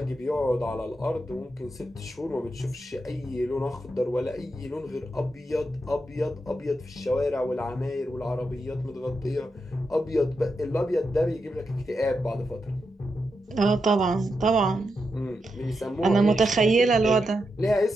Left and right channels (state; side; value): normal; both; correlation 0.86